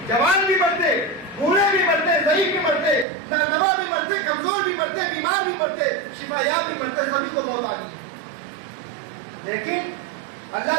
جوان بھی مرتے، بوڑھے بھی مرتے، ضعیف بھی مرتے، نادوا بھی مرتے، کمزور بھی مرتے، بیمار بھی مرتے، شفا یاب بھی مرتے، سبھی کو موت آ گئی۔ لیکن اللہ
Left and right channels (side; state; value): left; drops out; at 3.1 s